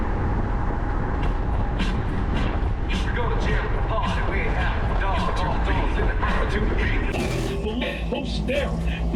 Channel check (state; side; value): identical; both; correlation 1.00